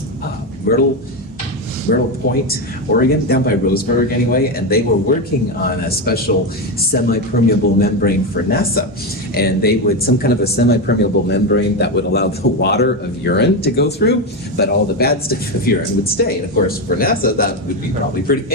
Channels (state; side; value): normal; both; correlation 0.12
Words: Myrtle Point, Oregon, down by Roseburg anyway, and they were working on a special semi-permeable membrane for NASA. And they would, some kind of a semi-permeable membrane that would allow the water of urine to go through, but all the bad stuff of urine would stay. And of course, for NASA, that would be probably pretty